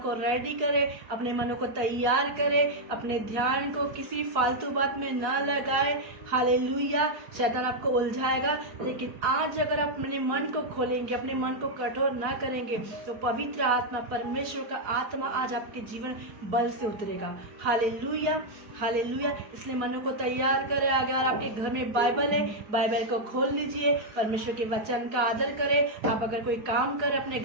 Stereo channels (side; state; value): left; late; 4.7 ms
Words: रेडी करें, अपने मनों को तैयार करें, अपने ध्यान को किसी फालतू बात में ना लगाए। हालेलुया। शैतान आपको उलझाएगा, लेकिन आज अगर आप अपने मन को खोलेंगे, अपने मन को कठोर ना करेंगे, तो पवित्र आत्मा, परमेश्वर का आत्मा आज आपके जीवन बल से उतरेगा। Hallelujah, hallelujah. इसलिए मनों को तैयार करें। अगर आपके घर में बाइबल है, बाइबल को खोल लीजिए, परमेश्वर के वचन का आदर करें। आप अगर कोई काम करें, अपने